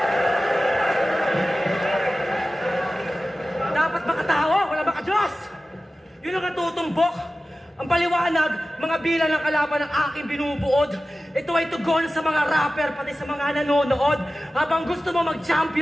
Dapat makatawa, wala makadiyos. Yun ang natutumbok. Ang paliwanag, mga bilang ng kalaban ng aking binubuod. Ito ay tugon sa mga rapper, pati sa mga nanonood. Habang gusto mo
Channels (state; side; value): normal; both; correlation 0.96